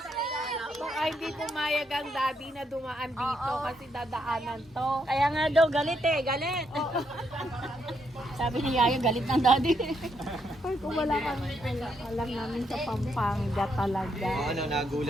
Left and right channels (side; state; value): both; normal; correlation 0.77